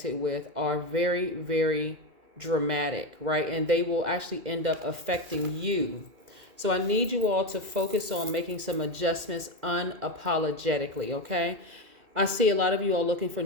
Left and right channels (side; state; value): left; late; 2.0 ms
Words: with are very dramatic, right? And they will actually end up affecting you. So I need you all to focus on making some adjustments unapologetically, okay? I see a lot of you all looking for